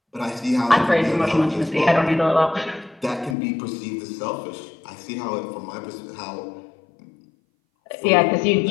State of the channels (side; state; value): right; drops out; at 3.4 s